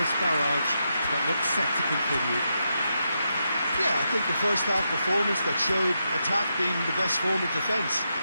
barrage that looks set to continue. Yeah, I think the first half performance that showed attack being the best form of defence.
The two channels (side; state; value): both; inverted; correlation -0.84